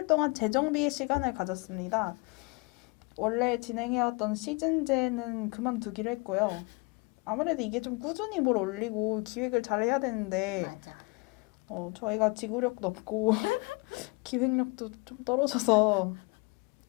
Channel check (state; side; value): quieter; right; 28.4 dB